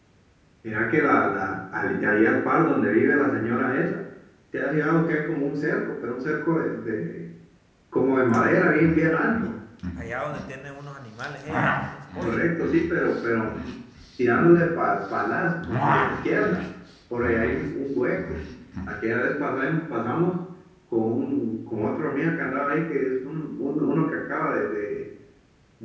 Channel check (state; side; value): identical; both; correlation 1.00